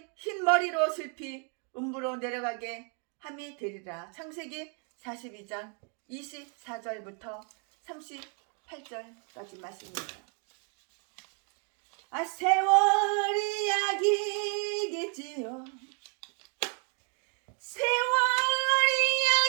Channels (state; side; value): quieter; left; 39.7 dB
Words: 흰 머리로 슬피 음부로 내려가게 함이 되리라. 창세기 42장 24절부터 38절까지 말씀입니다. 세월이 약이겠지요. 세월이